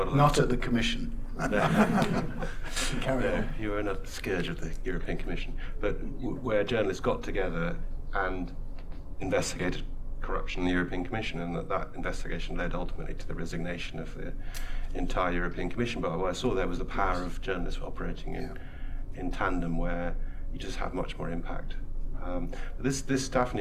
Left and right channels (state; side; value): identical; both; correlation 1.00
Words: a Not at the Commission. Carry on. You were a scourge of the European Commission, but where journalists got together and investigated corruption in the European Commission, and that investigation led ultimately to the resignation of the entire European Commission. But what I saw there was the power of journalists operating in tandem, where you just have much more impact. But this